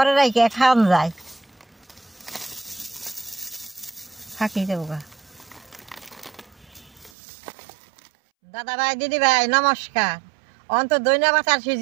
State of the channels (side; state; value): left; drops out; at 7.1 s